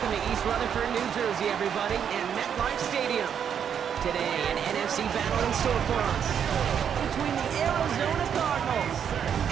to East Rutherford, New Jersey, everybody, and MetLife Stadium. Today, an NFC battle in store for us between the Arizona Cardinals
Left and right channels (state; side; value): quieter; left; 8.2 dB